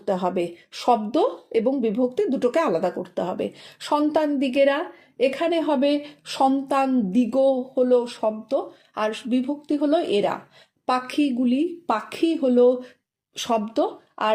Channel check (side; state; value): both; identical; correlation 1.00